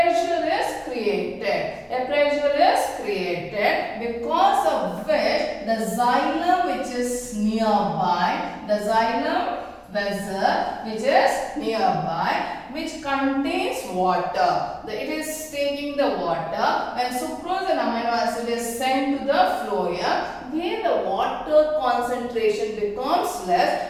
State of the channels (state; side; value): identical; both; correlation 1.00